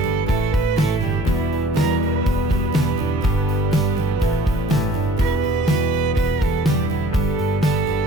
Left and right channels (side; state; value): both; normal; correlation 0.49